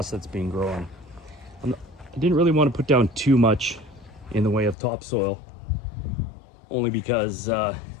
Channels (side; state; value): right; drops out; at 4.8 s